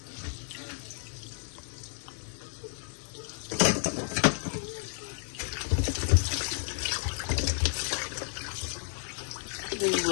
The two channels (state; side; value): silent; right; 57 dB below the other